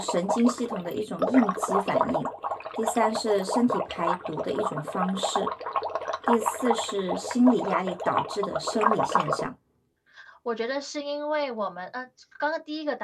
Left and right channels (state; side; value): identical; both; correlation 1.00